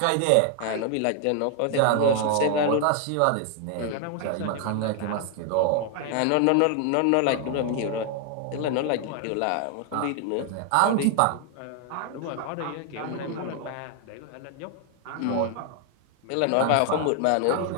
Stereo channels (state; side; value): different; both; correlation 0.00